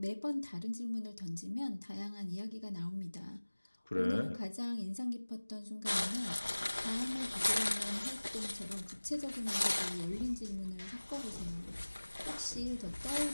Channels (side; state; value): both; inverted; correlation -1.00